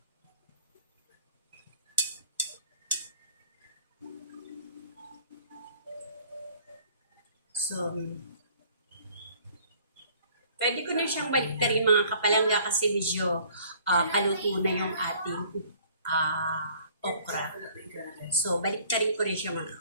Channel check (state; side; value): inverted; both; correlation -0.55